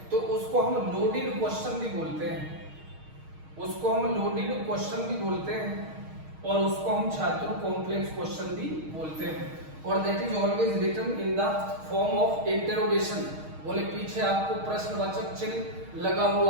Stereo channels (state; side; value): late; left; 6.4 ms